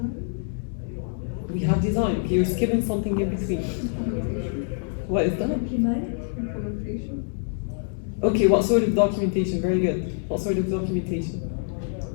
We have design. Okay, you're skipping something in between. What is that? Implementation. Okay, what sort of documentation? Very good. What sort of documentation?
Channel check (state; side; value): silent; right; 61 dB below the other